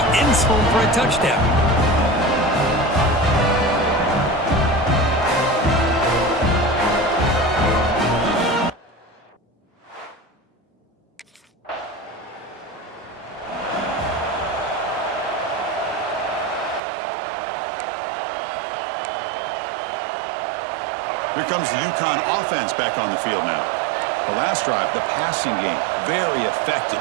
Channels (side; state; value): left; drops out; at 16.8 s